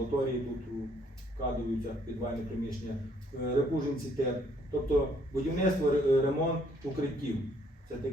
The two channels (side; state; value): both; normal; correlation 0.66